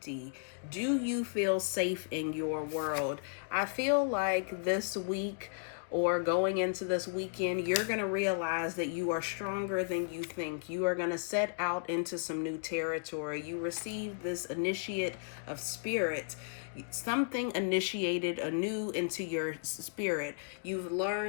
Do you feel safe in your world? I feel like this week, or going into this weekend, you're going to realize that you are stronger than you think. You are going to set out into some new territory. You received this initiate of spirit. Something initiated anew into your spirit. You've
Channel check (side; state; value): right; silent; digital silence